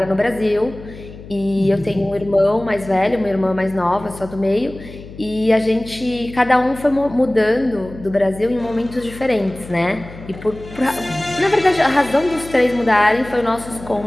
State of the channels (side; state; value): left; noise; hum, 16 dB below the sound